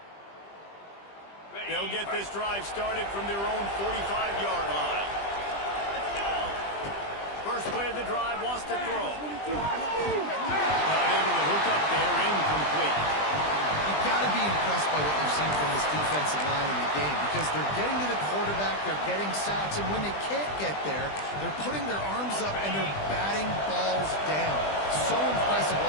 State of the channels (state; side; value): late; right; 20 ms